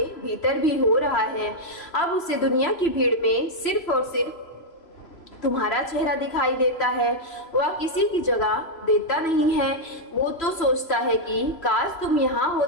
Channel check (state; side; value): late; right; 3.0 ms